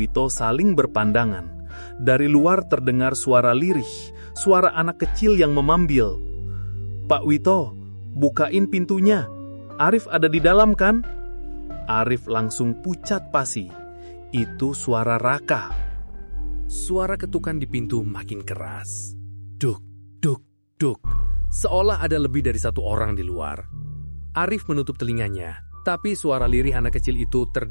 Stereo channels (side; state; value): both; inverted; correlation -1.00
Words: saling berpandangan. Dari luar terdengar suara lirih, suara anak kecil yang memambil. "Pak Wito, bukain pintunya. Arif ada di dalam kan?" Arif langsung pucat pasi. Itu suara Raka. Suara ketukan di pintu makin keras. Duk, duk, duk. Seolah ada lebih dari satu orang di luar. Arif menutup telinganya, tapi suara lirih anak kecil itu